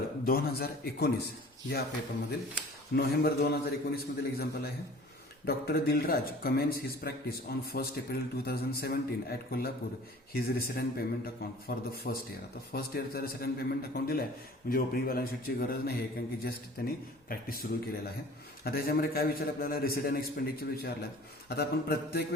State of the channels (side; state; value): both; normal; correlation 0.46